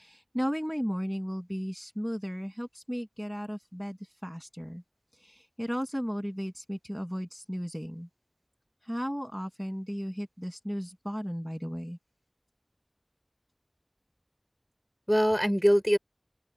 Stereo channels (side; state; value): both; identical; correlation 1.00